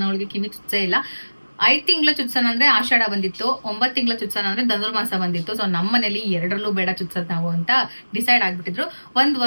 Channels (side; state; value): both; inverted; correlation -1.00